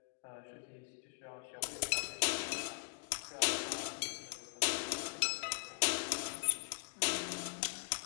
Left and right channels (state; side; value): silent; right; digital silence